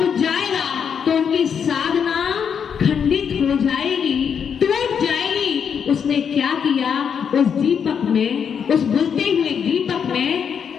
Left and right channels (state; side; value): quieter; right; 7.3 dB